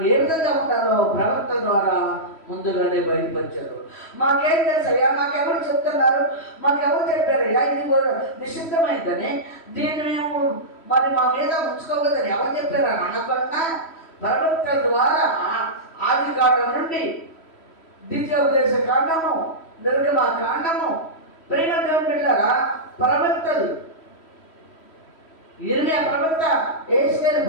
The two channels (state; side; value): late; right; 3.1 ms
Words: ఏ విధంగా ఉంటారో ప్రవక్త ద్వారా ముందుగానే బయలుపరిచారు. మాకేం తెలుసయ్యా, మాకెవరు చెప్తున్నారు, మాకెవరు చెప్పారయ్యా ఇది నిషిద్ధమైందని, దీన్ని మేము మరి మా మీద ఉంచుకోవద్దని ఎవరు చెప్పారా అనకుండా ప్రవక్తల ద్వారా ఆది కాండం నుండి ద్వితీయోపదేశ కాండము, నిర్గమ కాండము, ప్రేమ దేవుడు పెట్టారా ప్రవక్తలు, ఇర్మియా ప్రవక్త, యెహెజ్కేలు